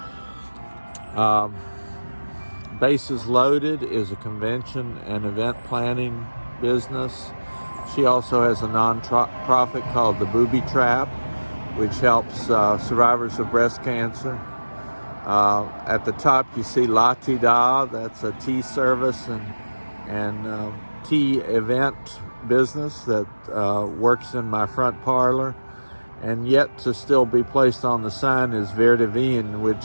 Bases Loaded is a convention and event planning business. She also has a non-profit called the Booby Trap, which helps survivors of breast cancer. At the top you see La Ti Da, that's a tea service and tea event business that works in my front parlor. And yet to still be placed on the sign is Verde Vin,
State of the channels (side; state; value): both; inverted; correlation -1.00